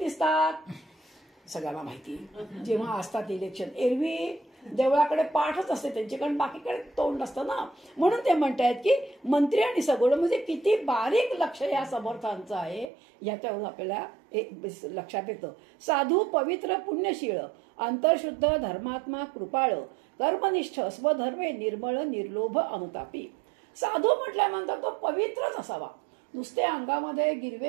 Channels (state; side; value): drops out; left; at 12.9 s